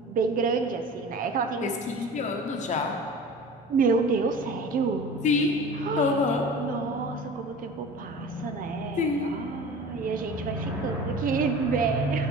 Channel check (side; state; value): both; normal; correlation 0.38